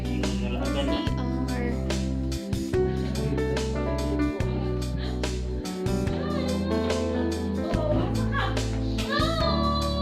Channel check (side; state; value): both; identical; correlation 1.00